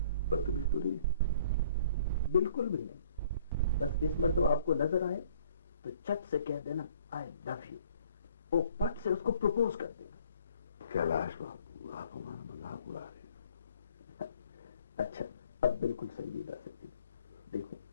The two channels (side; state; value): both; inverted; correlation -0.57